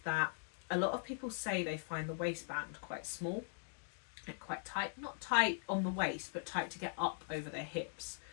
a lot of people say they find the waistband quite small and quite tight. Not tight on the waist, but tight to get up over their hips.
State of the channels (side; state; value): right; silent; digital silence